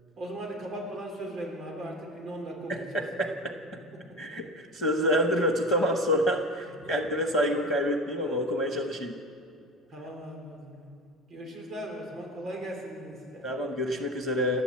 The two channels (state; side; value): normal; both; correlation 0.31